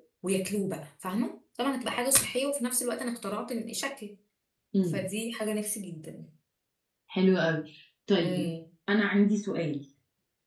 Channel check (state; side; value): identical; both; correlation 1.00